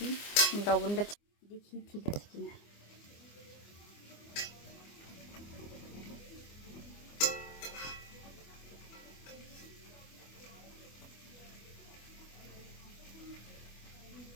লবণটা দেখি ঠিক আছে কিনা।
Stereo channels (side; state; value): right; late; 24 ms